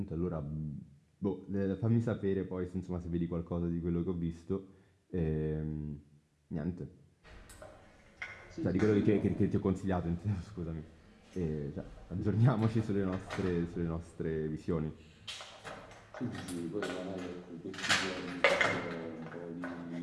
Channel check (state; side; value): identical; both; correlation 1.00